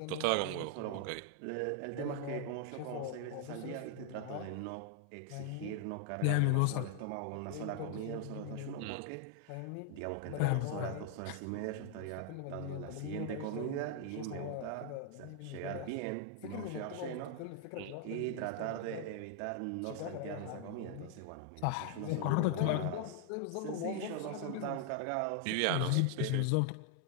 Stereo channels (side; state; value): both; different; correlation 0.00